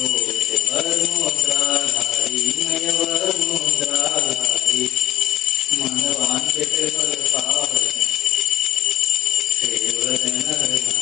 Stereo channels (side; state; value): right; quieter; 14.0 dB